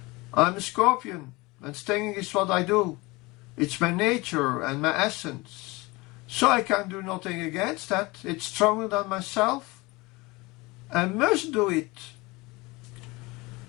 "I'm a scorpion, and stinging is what I do. It's my nature and my essence. So I can do nothing against that. It's stronger than myself. and must do it.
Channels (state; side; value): quieter; right; 23.4 dB